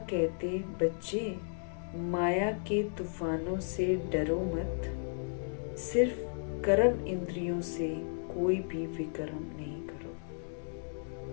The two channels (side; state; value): right; silent; digital silence